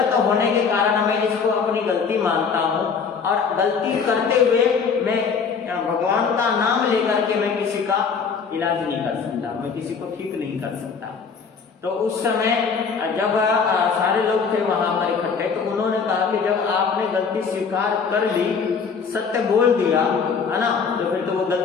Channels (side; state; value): right; quieter; 5.8 dB